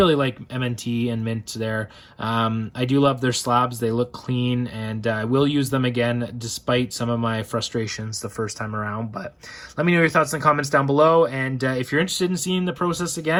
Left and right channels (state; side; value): identical; both; correlation 1.00